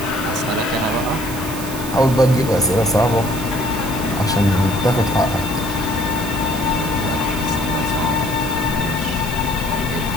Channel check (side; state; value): right; noise; hiss, 11 dB below the sound